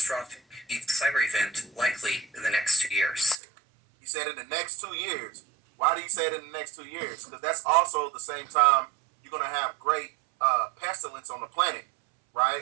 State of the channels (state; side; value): drops out; left; at 3.4 s